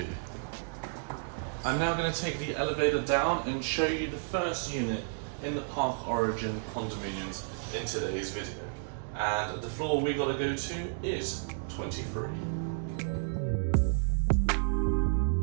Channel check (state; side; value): silent; left; digital silence